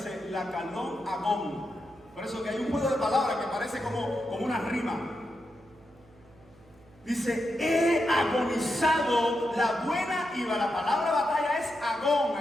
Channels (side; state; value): right; noise; hum, 28 dB below the sound